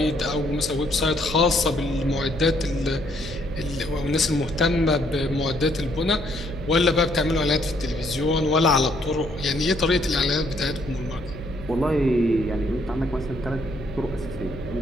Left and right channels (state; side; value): noise; left; hum, 14 dB below the sound